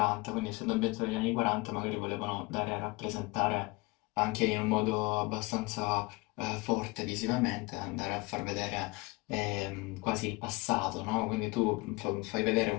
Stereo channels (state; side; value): quieter; right; 24.3 dB